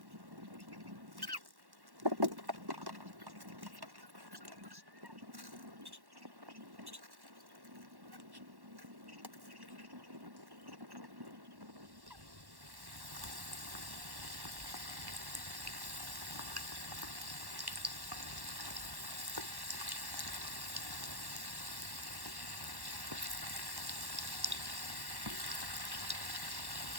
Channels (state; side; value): late; left; 1.1 ms